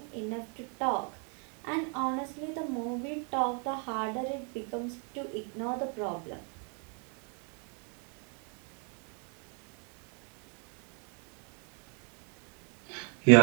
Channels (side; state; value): left; quieter; 38.7 dB